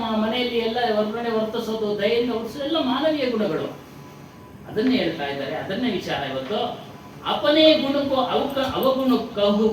ಮನೆಯಲ್ಲಿ ಎಲ್ಲ ಹೊರಗಡೆ ವರ್ತಿಸೋದು, ದಯೆಯಿಂದ ವರ್ತಿಸೋದು ಎಲ್ಲ ಮಾನವೀಯ ಗುಣಗಳು. ಅದನ್ನೇ ಹೇಳ್ತಾ ಇದ್ದಾರೆ. ಅದನ್ನೇ ವಿಚಾರ ಇವತ್ತು. ಅಪನೇ ಗುಣಕ್ಕೂ ಅವಗುಣ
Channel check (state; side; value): identical; both; correlation 1.00